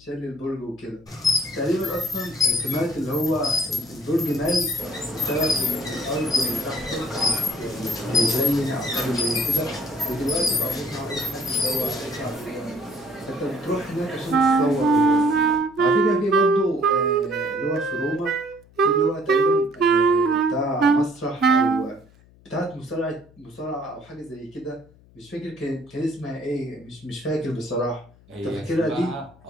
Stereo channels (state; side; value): noise; left; hum, 27 dB below the sound